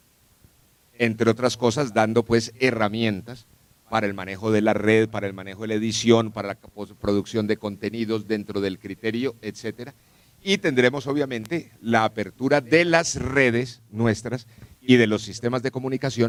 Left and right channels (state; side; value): identical; both; correlation 1.00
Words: Entre otras cosas, dando pues herramientas para el manejo de la red, para el manejo de la edición, para la producción de contenidos dentro del criterio, etcétera. Y tendremos obviamente la apertura de las redes nuestras y de los sistemas de